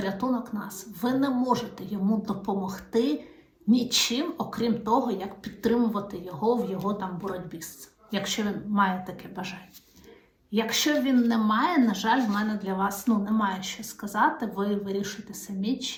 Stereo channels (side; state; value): both; identical; correlation 1.00